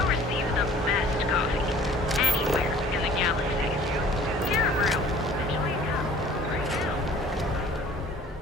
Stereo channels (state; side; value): normal; both; correlation 0.50